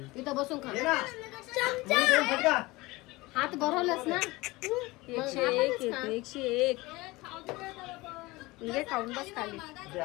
इथं बसून खा. ये ना. मी देऊ फटका. हात भरवलंस ना. 101 येते 101 म्हणजे खाऊन बस खाली दे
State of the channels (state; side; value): quieter; right; 21.5 dB